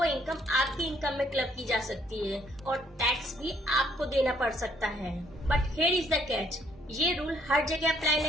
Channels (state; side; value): normal; both; correlation 0.66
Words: इनकम आपकी इनकम में क्लब की जा सकती है और टैक्स भी आपको देना पड़ सकता है। But here is the catch, ये रूल हर जगह अप्लाई